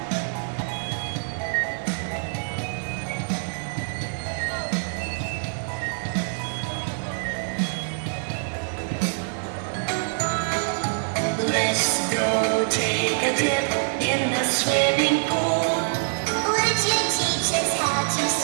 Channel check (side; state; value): left; silent; 59 dB below the other